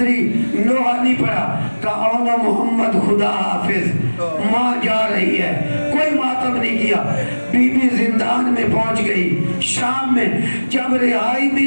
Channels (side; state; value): both; inverted; correlation -1.00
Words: نوحہ نہیں پڑھا، کہا اون محمد خدا حافظ، ماں جا رہی ہے، کوئی ماتم نہیں کیا۔ بی بی زندان میں پہنچ گئی۔ شام میں جب رہائی